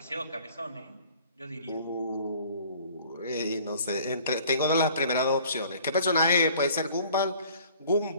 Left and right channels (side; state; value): both; inverted; correlation -0.53